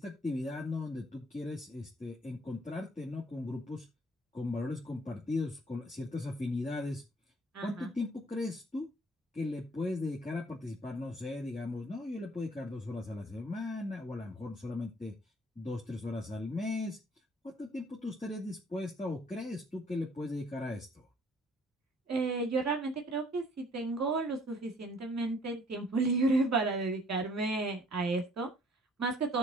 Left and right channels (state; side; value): normal; both; correlation 0.59